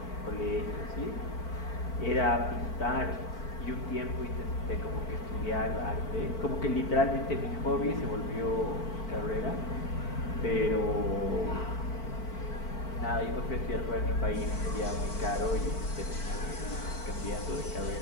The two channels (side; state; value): right; late; 4.5 ms